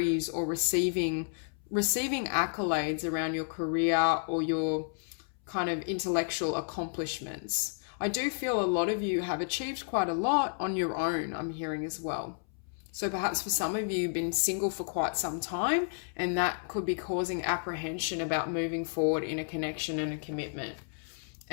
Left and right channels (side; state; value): right; silent; 57 dB below the other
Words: or receiving accolades around your career or your kind of intellectual accomplishments. I do feel a lot of you have achieved quite a lot on your own, I'm hearing as well. So perhaps for some of you, you've been single for quite some time, and that could be causing apprehension about moving forward in a connection and a commitment.